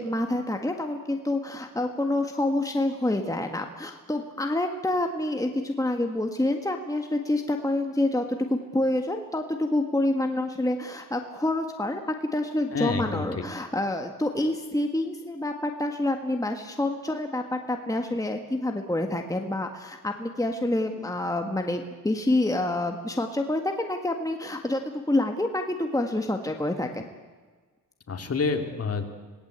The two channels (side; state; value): both; normal; correlation 0.76